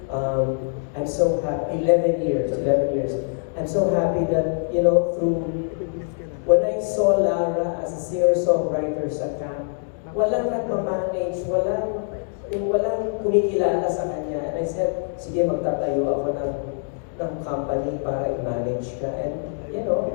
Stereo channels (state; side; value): silent; right; digital silence